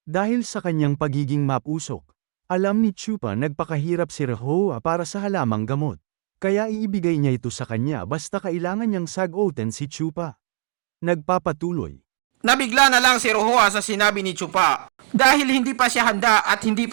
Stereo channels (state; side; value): silent; left; digital silence